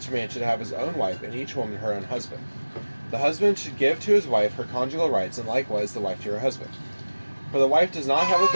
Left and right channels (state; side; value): inverted; both; correlation -1.00